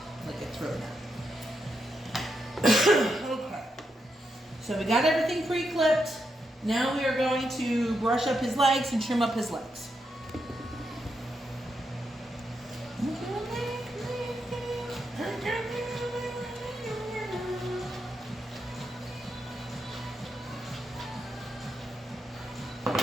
Look, it's really not. Okay. So So we got everything pre-clipped. Now we are going to brush up his legs and trim up his legs.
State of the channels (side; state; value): both; normal; correlation 0.83